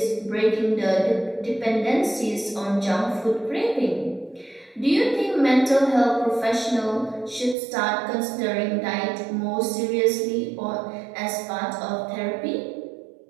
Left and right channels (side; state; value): left; drops out; at 7.6 s